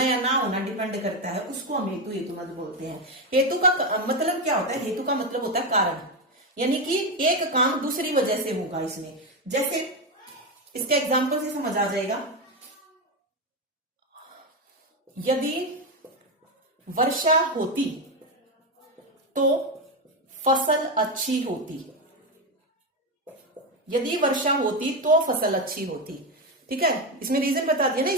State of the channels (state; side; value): normal; both; correlation 0.11